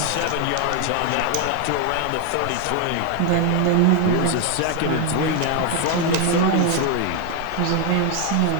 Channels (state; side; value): different; both; correlation 0.01